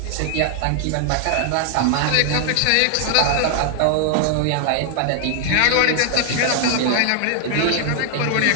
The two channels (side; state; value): both; different; correlation 0.00